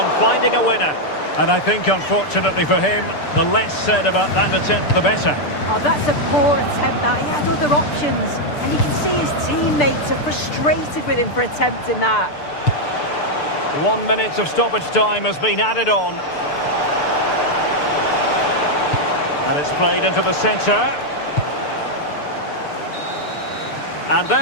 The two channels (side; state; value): right; late; 6.8 ms